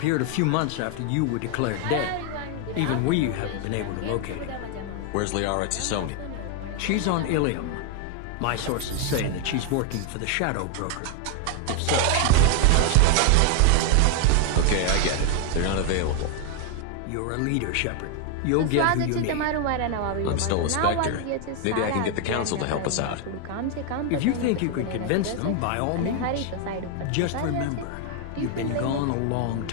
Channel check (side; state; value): both; different; correlation 0.01